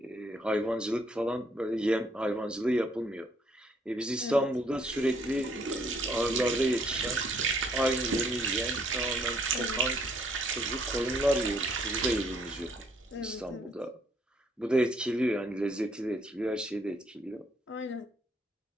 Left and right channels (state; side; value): normal; both; correlation 0.67